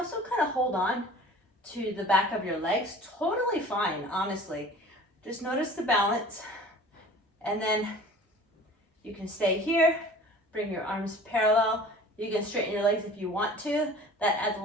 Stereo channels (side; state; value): both; normal; correlation 0.44